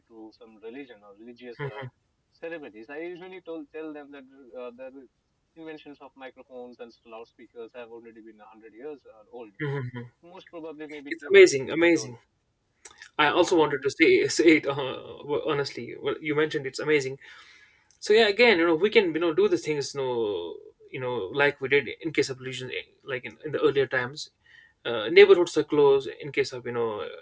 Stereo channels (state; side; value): identical; both; correlation 1.00